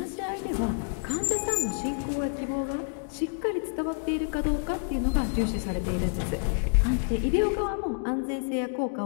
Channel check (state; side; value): silent; right; digital silence